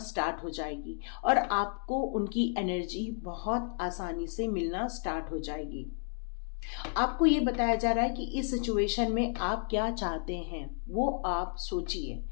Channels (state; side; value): silent; right; 56 dB below the other